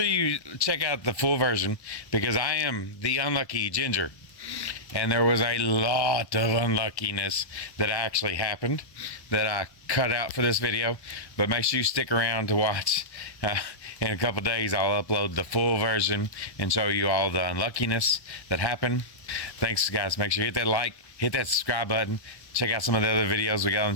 you check out the full version, because I am the unlucky Ginger, and there was a lot of unluckiness that actually happened that I cut out for this video. But make sure you stick around to watch. In a couple days I'll upload the full version and show you all the unluckiness that happened. Thanks guys. Make sure you hit that like, hit that subscribe button, check out some of the other videos we got on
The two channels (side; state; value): right; late; 1.1 ms